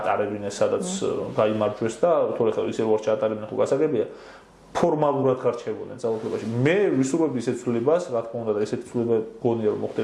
სადაც გაიმარჯვეს და თორე ხა ისე რო ჩაატარებინე ხო გასაგებია. ფორმალურად გარჩევოდნენ ძალაუფლებაში. მე ვისურვებდი ისეთ ცვლილებას, რა თქმა უნდა და ესეთი ცვლილება გონია რომ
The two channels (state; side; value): identical; both; correlation 1.00